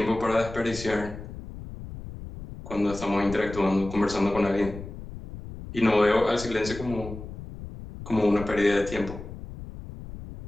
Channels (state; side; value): noise; left; rumble, 12 dB below the sound